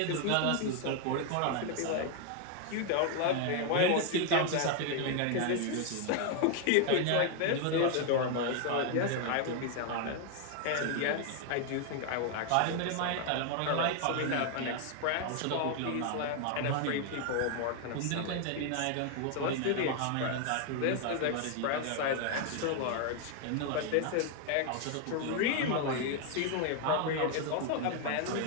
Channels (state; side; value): different; both; correlation 0.00